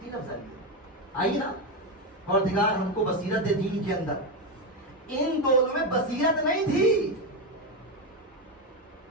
لفظ آئی نا، پروردگار ہم کو بصیرت دے دین کے اندر. ان دونوں میں بصیرت نہیں تھی.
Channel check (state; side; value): normal; both; correlation 0.10